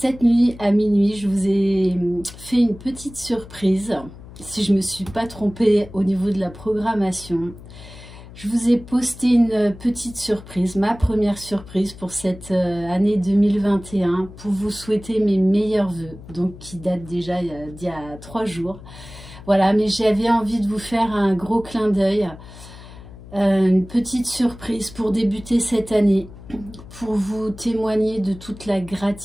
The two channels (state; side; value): noise; left; hum, 17 dB below the sound